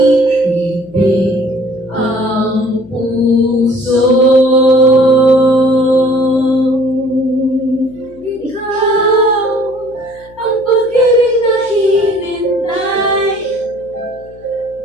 ang puso. Ikaw ang pag-ibig na hinintay.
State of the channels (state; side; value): noise; left; hum, 25 dB below the sound